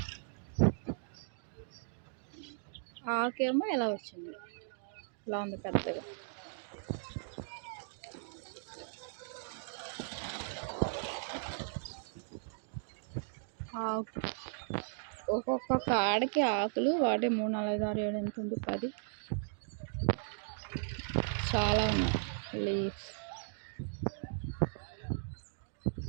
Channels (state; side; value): silent; left; digital silence